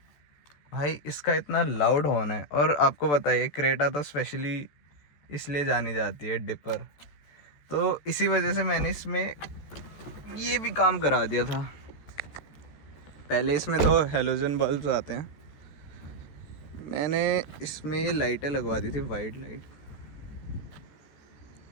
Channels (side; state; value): right; late; 14 ms